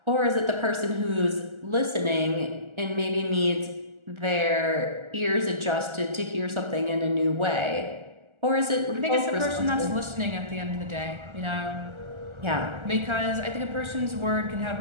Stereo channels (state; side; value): late; left; 1.4 ms